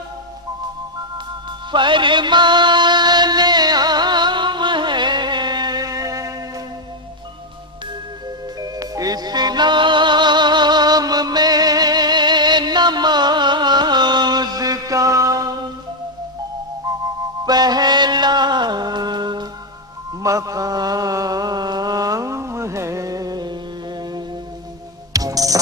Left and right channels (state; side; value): normal; both; correlation 0.02